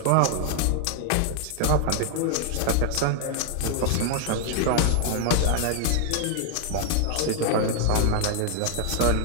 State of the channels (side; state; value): both; different; correlation 0.00